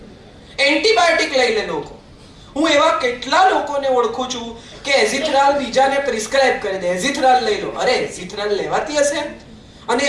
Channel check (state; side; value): identical; both; correlation 1.00